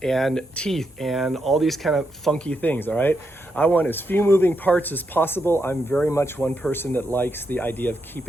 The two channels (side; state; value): both; normal; correlation 0.82